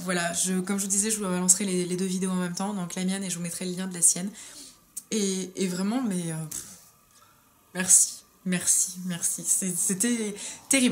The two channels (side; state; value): both; identical; correlation 1.00